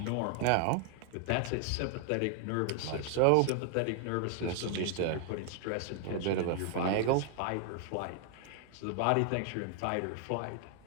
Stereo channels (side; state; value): both; different; correlation 0.00